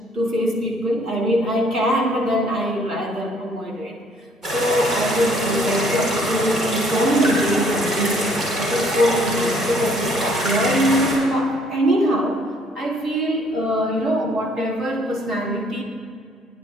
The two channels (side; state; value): both; normal; correlation 0.62